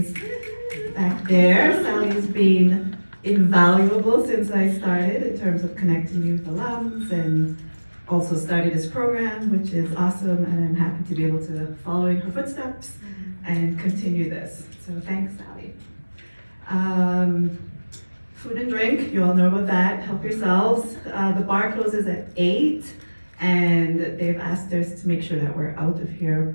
back there. Sally has been invaluable since I started in terms of connecting youth alums, and also started this program, which is awesome, and I'm happy to be able to follow in her footsteps and continue this. So thanks, Sally. Food and drink, you all know about that. Help yourselves. The bar closes at 8. And they've asked us to make sure that we're out of here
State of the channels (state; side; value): inverted; both; correlation -1.00